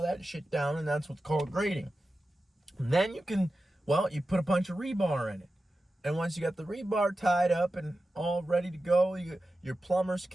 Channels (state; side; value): normal; both; correlation 0.93